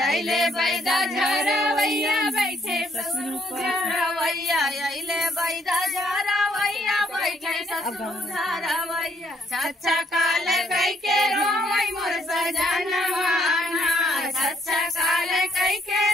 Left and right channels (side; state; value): both; normal; correlation 0.69